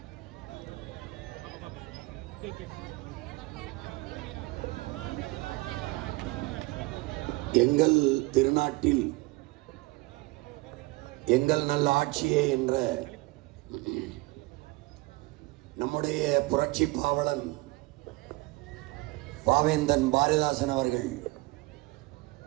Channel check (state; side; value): quieter; left; 22.7 dB